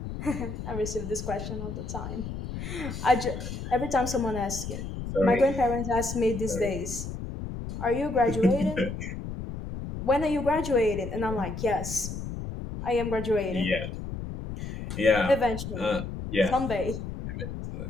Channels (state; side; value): noise; left; rumble, 7 dB below the sound